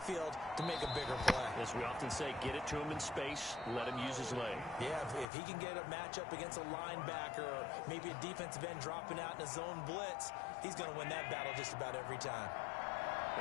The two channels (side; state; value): right; drops out; at 5.2 s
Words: to make a bigger play. As we often say, get it to him in space, let him use his leg. Yeah, if he can get a matchup against a linebacker or maybe a defensive end dropping out in a zone blitz, he's going to win that battle just about every time.